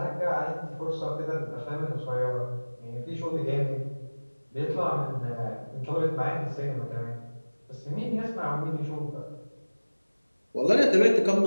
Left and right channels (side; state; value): both; inverted; correlation -1.00